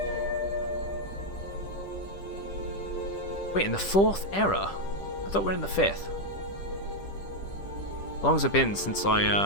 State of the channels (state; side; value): late; right; 10 ms